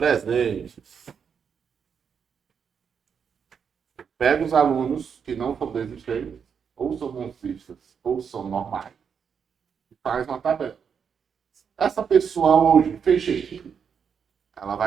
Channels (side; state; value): left; quieter; 6.9 dB